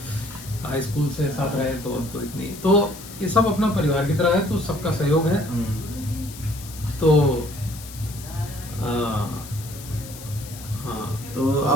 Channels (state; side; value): noise; left; hiss, 15 dB below the sound